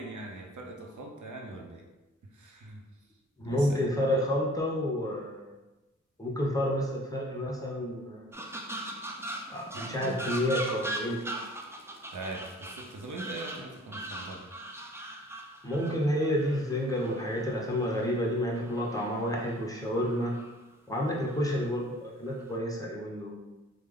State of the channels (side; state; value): both; normal; correlation 0.51